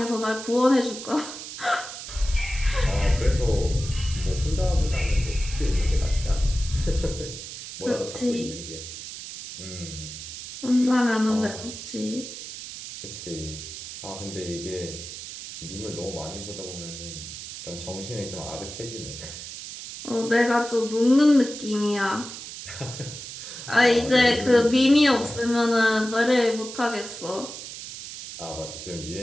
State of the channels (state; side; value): noise; right; hiss, 10 dB below the sound